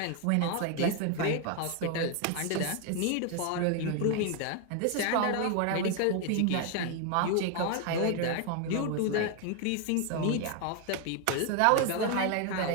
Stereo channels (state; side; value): different; both; correlation 0.01